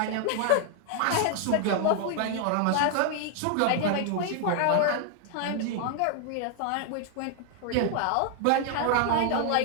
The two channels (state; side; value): different; both; correlation 0.00